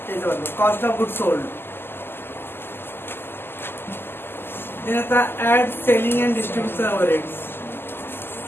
Cost of good sold add selling and distribution overheads.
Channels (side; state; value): right; late; 0.11 ms